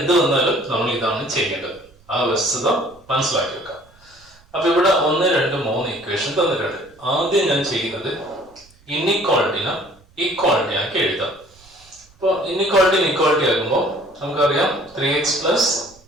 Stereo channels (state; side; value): noise; right; rumble, 29 dB below the sound